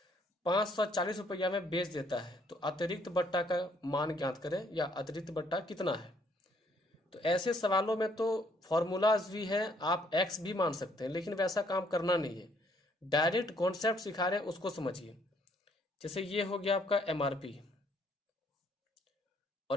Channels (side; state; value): both; normal; correlation 0.66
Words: 540 रुपया में बेच देता है। तो अतिरिक्त बट्टा का मान ज्ञात करें, या अतिरिक्त बट्टा कितना है। तो ऐसे सवालों में तो फॉर्मूलाज भी हैं, आप एक्स भी मान सकते हैं, लेकिन वैसा काम करना नहीं है, डायरेक्ट कॉन्सेप्ट सिखा रहे हैं उसको समझिए। जैसे ये हो गया आपका एमआरपी,